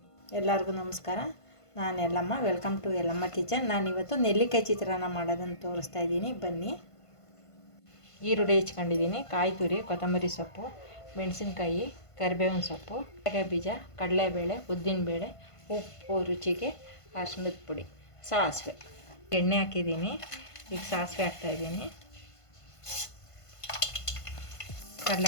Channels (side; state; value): right; late; 1.5 ms